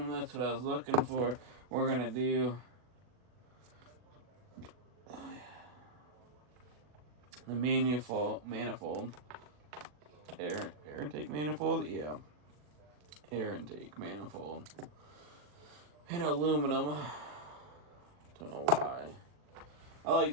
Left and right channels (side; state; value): left; late; 40 ms